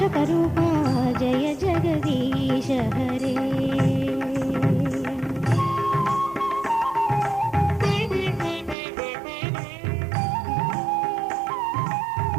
जय जगदीश हरे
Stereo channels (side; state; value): left; drops out; at 8.8 s